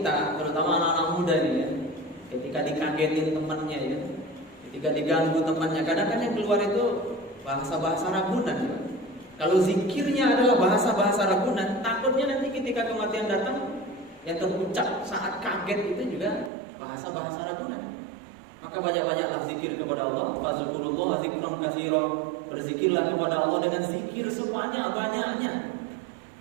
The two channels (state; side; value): drops out; left; at 16.5 s